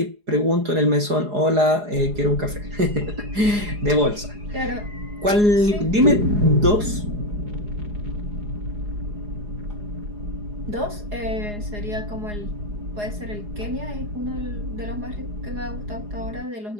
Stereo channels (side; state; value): left; late; 4.8 ms